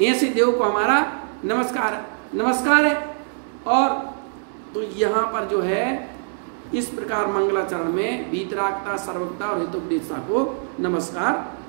ऐसे देव को हमारा नमस्कार है। और तो यहाँ पर जो है इस प्रकार मंगलाचरण में वीतरागता, सर्वज्ञता और हितोपदेशता को नमस्कार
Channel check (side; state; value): left; silent; digital silence